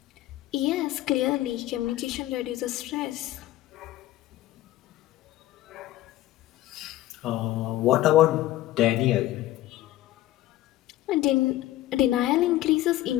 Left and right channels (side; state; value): right; quieter; 15.1 dB